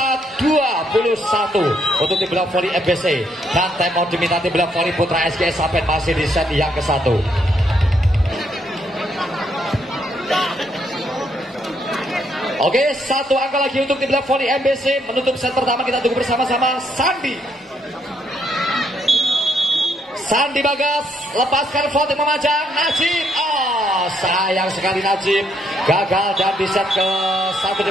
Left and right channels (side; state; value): both; normal; correlation 0.73